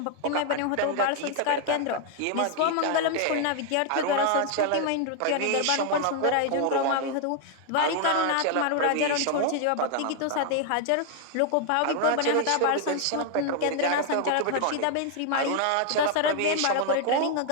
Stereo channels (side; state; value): both; different; correlation 0.00